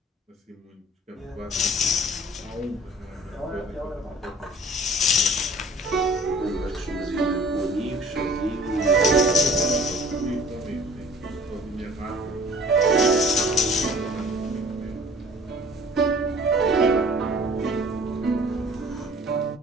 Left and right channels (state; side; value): normal; both; correlation 0.49